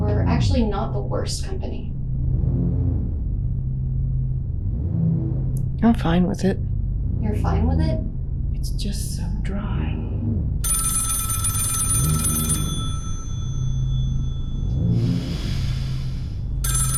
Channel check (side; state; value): both; identical; correlation 1.00